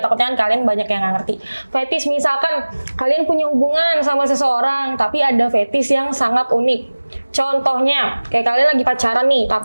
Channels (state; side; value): inverted; both; correlation -1.00